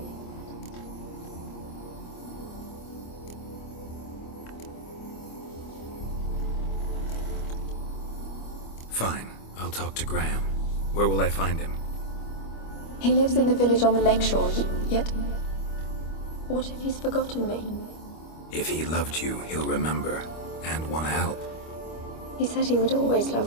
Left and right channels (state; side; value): late; right; 25 ms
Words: Fine. I'll talk to Graham. Where will I find him? He lives in the village on the lakeshore, yet... What if he's forgotten me? If he loved you, he'll remember, and want to help. He said he would always